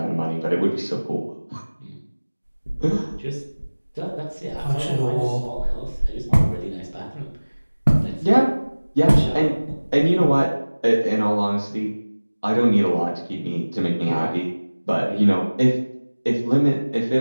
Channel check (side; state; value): both; inverted; correlation -1.00